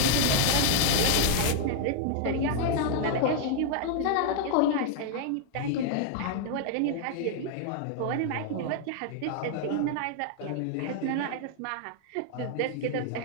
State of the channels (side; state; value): both; different; correlation 0.00